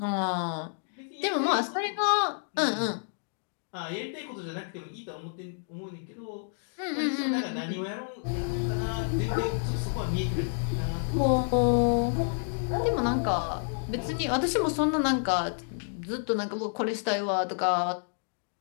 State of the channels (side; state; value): right; silent; digital silence